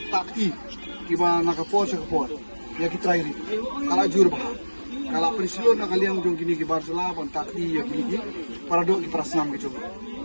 kiba nakapor ya kitrai kala jur ba kalau peristiwa nak kalian jong kini ki Barcelona pun takdi ya kini ki para dok ki prasnam ki jong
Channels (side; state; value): both; inverted; correlation -1.00